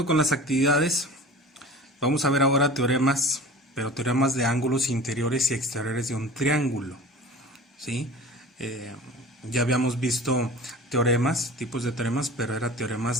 con las actividades, vamos a ver ahora teoremas, pero teoremas de ángulos interiores y exteriores de un triángulo, ¿sí? Eh, ya habíamos visto teoremas, tipos de teoremas, pero era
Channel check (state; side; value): normal; both; correlation 0.39